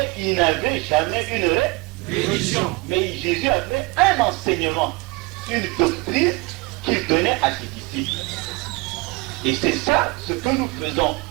il n'avait jamais une religion. Mais Jésus avait un enseignement, une doctrine qu'il donnait à ses disciples. Et c'est ça ce que nous faisons.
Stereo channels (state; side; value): quieter; left; 25.6 dB